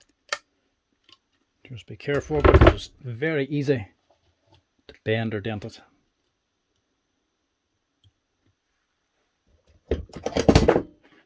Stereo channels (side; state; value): both; identical; correlation 1.00